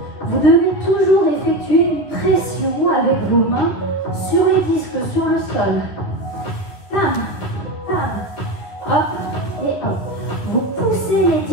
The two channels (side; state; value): right; late; 10 ms